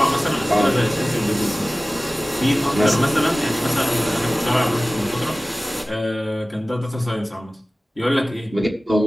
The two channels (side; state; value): both; normal; correlation 0.97